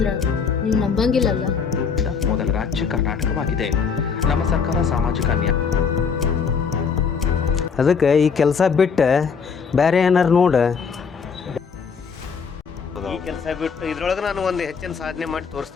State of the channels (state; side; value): quieter; right; 5.9 dB